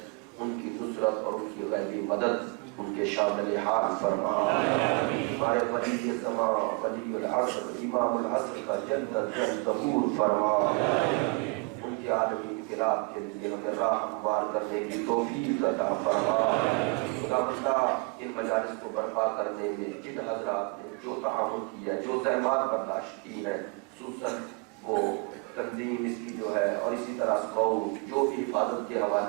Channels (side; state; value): left; quieter; 30.6 dB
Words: ان کی نصرت اور ان کی غیبی مدد ان کے شامل حال فرما۔ ہمارے ولی زمان ولی العصر امام العصر کا جلد جلد ظہور فرما۔ ان کے عالمی انقلاب کے لیے ہمیں راہ ہموار کرنے کی توفیق عطا فرما۔ خدا بندہ ان مجالس کو برپا کرنے میں جن حضرات نے جو تعاون کیا جو زحمات برداشت کی ہیں خصوصاً وہ تنظیم اس کی جو ہے اور اسی طرح اسکاؤٹ جو بھی حفاظت کے